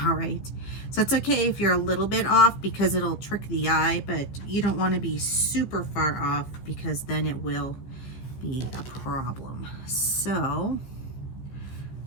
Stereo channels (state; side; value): late; right; 15 ms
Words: all right? So it's okay if you're a little bit off, because it'll trick the eye, but you don't want to be super far off, because then it will be a problem. So